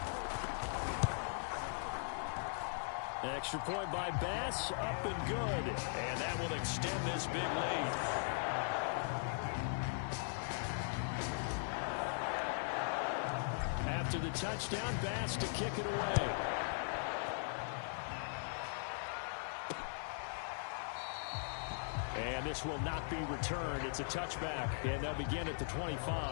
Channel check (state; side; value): silent; right; 51 dB below the other